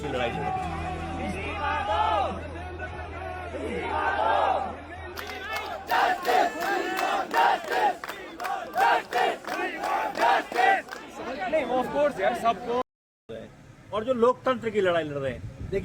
लड़ाई लड़ रहे हैं। सबको, और जो लोकतंत्र की लड़ाई लड़ रहे हैं।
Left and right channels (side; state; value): both; identical; correlation 1.00